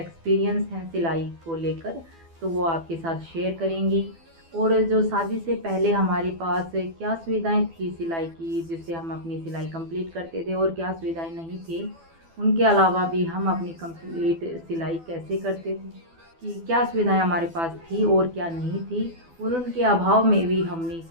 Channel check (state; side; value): late; left; 12 ms